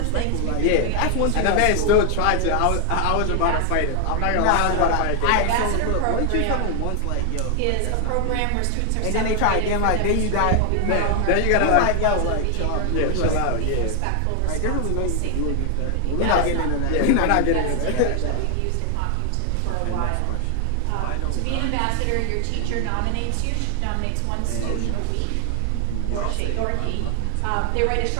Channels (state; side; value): different; both; correlation 0.00